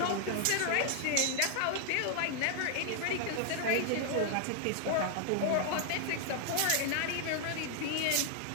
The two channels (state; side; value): different; both; correlation 0.00